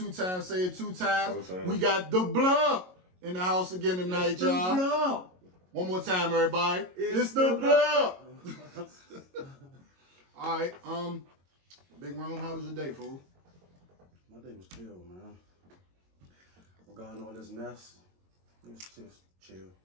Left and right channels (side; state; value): left; late; 22 ms